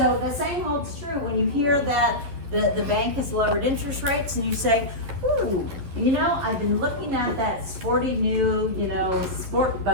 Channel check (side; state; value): left; late; 11 ms